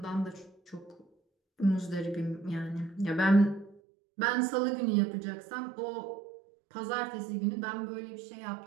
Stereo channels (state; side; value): drops out; left; at 3.8 s